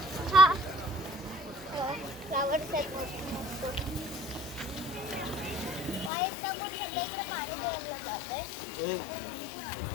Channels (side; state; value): right; drops out; at 6.1 s